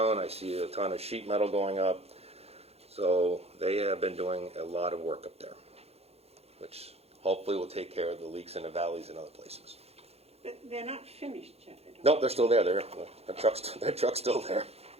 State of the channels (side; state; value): left; late; 0.29 ms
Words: I see a ton of sheet metal going up. So they have been doing a lot of work up there, which hopefully will take care of the leaks in the valleys and other places. But they're not finished yet, I don't Nope, they're still there. Their truck's still there.